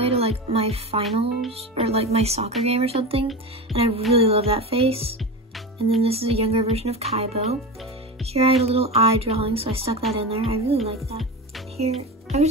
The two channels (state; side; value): normal; both; correlation 0.25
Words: to like my finals or like my soccer game or something, and I really love that face. And then this is a younger version of Kaibo. Here I had a little eye drawing, so I stuck that in there. I really like that. Here,